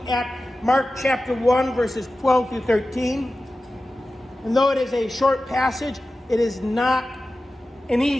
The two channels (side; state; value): both; normal; correlation 0.94